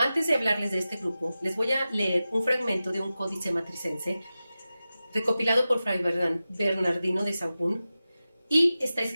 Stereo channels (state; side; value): inverted; both; correlation -0.94